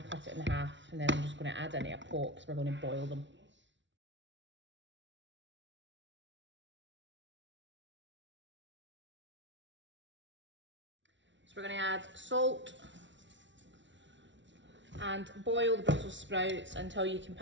cut it in half, and then I'm just going to add it into a pot because we're going to boil them. So we're going to add salt and boil the Brussels sprouts until you can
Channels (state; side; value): late; left; 0.54 ms